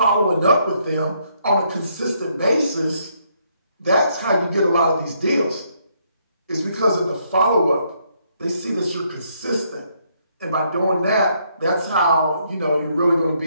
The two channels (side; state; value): both; inverted; correlation -0.72